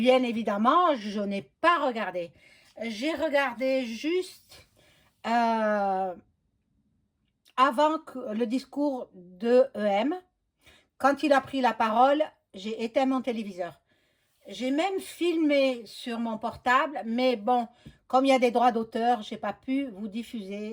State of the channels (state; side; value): identical; both; correlation 1.00